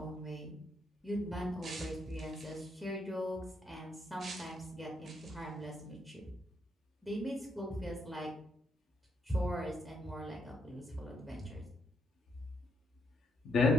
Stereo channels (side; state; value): both; normal; correlation 0.76